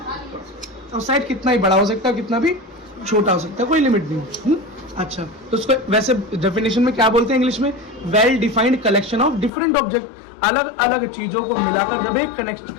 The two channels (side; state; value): right; drops out; at 9.5 s